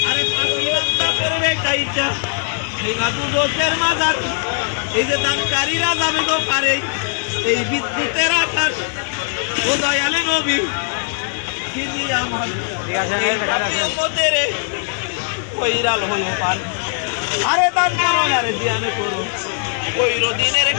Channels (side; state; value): right; silent; digital silence